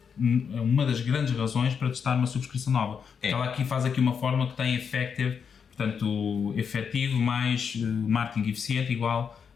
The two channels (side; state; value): right; quieter; 6.7 dB